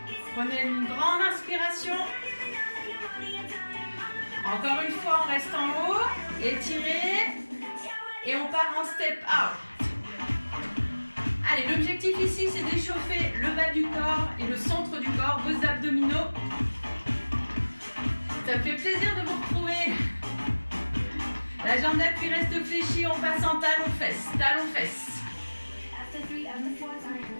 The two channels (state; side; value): inverted; both; correlation -1.00